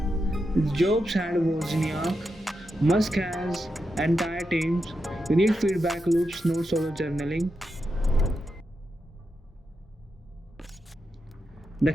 Jobs had Wozniak, Musk has entire teams. You need feedback loops, not solo journaling. The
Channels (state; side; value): normal; both; correlation 0.87